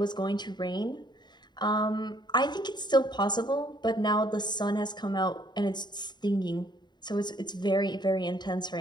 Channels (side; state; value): right; late; 0.21 ms